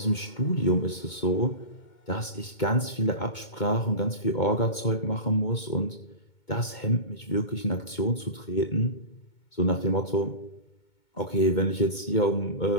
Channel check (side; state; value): right; late; 2.2 ms